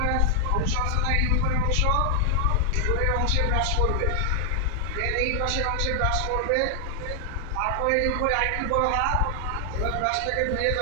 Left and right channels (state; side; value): different; both; correlation 0.00